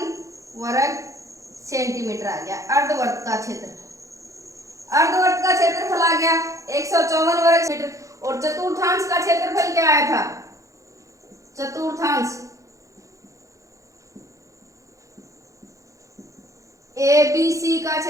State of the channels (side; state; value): left; late; 0.15 ms